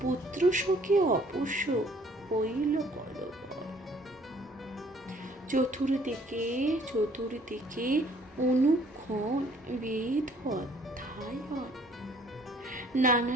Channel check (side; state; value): both; normal; correlation 0.59